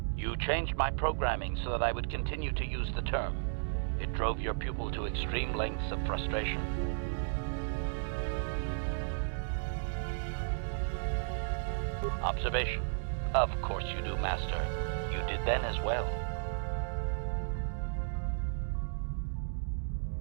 You changed my programming so that I would continue to use the term. It drove your pupil to extreme lengths of frustration. Observation. Of course you do, Master. You did then as well.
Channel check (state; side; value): silent; left; digital silence